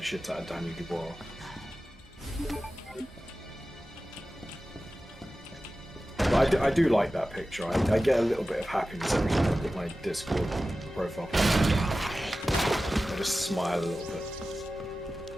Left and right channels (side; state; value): both; normal; correlation 0.95